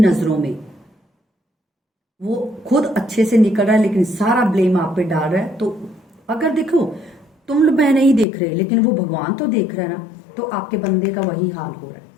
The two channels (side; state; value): right; drops out; at 8.2 s